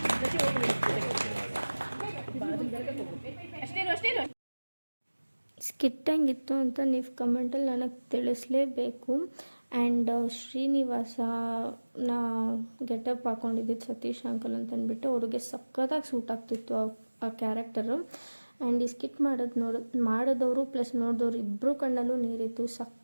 ಸ್ಕಿಟ್ ಹೆಂಗಿತ್ತು ಅಂತ ನೀವು ಕಮೆಂಟಲ್ಲಿ ನನಗೆ ತಿಳಿಸ್ಲೇಬೇಕು. ಆ್ಯಂಡ್ ಶ್ರೀನಿವಾಸನ ಗೆಟಪ್ ಹಾಕ್ಕೊಂಡಿದ್ದು ಸತೀಶ್ ಅಂಕಲ್ ಅಂತ ಅಂದ್ಬಿಟ್ಟು ಅವ್ರಿಗೆ ಸಖತ್ತಾಗಿ ಸೂಟ್ ಆಗ್ತಿತ್ತು ಆ ಕ್ಯಾರೆಕ್ಟರು. ಆ್ಯಂಡ್ ಈ ಸ್ಕಿಟ್ ಮಾಡಿದವರು ಪ್ಲಸ್ ನೋಡಿದವರು ಇಬ್ಬರು ಕಣ್ಣಲ್ಲೂ ನೀರಿತ್ತು.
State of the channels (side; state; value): both; inverted; correlation -1.00